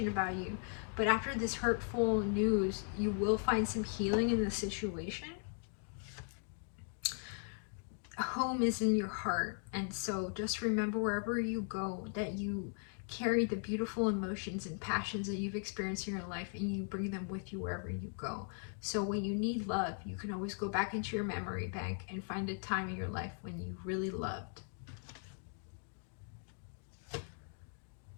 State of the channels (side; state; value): right; silent; 52 dB below the other